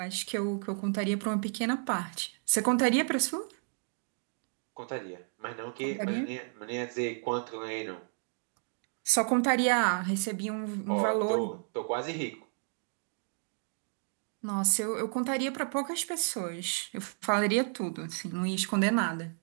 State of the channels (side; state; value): left; silent; 56 dB below the other